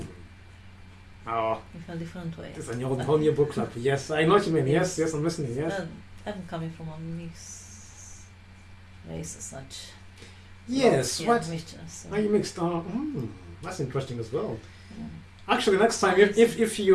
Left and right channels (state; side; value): identical; both; correlation 1.00